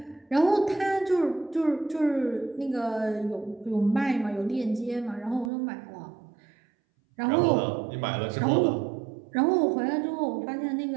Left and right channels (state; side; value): drops out; left; at 5.5 s